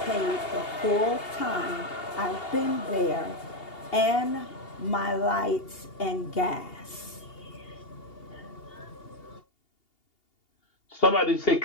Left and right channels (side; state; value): right; late; 2.8 ms